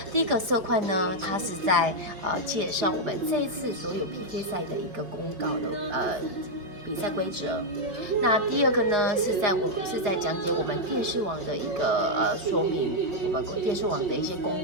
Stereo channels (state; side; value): late; left; 5.1 ms